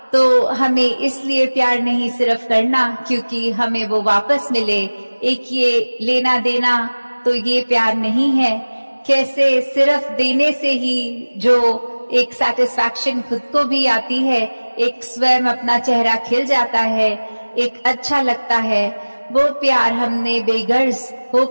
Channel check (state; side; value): inverted; both; correlation -1.00